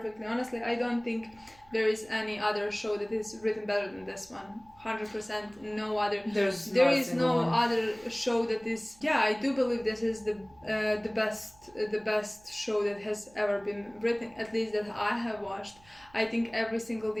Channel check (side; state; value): right; noise; hum, 28 dB below the sound